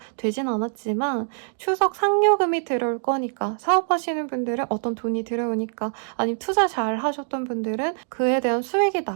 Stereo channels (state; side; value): silent; left; digital silence